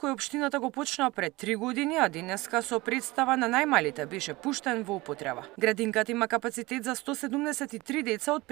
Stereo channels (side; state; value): left; quieter; 21.4 dB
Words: кој општината го почна пред 3 години, а денеска со представа на најмалите беше пуштен во употреба. Градинката има капацитет за 173 деца од